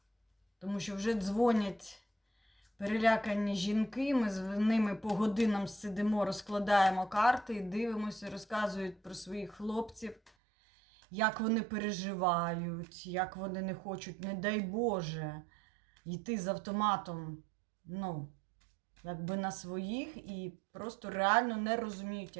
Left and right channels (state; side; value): drops out; left; at 10.3 s